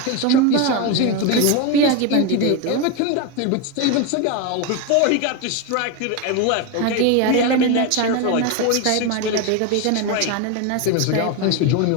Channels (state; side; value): different; both; correlation 0.03